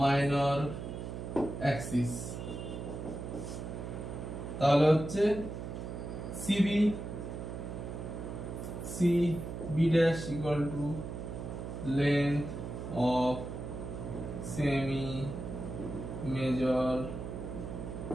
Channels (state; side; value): noise; right; hum, 7 dB below the sound